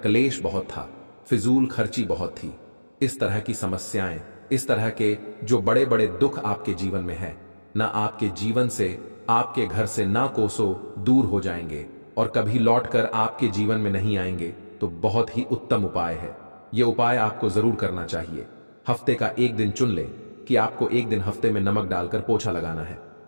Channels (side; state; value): both; inverted; correlation -1.00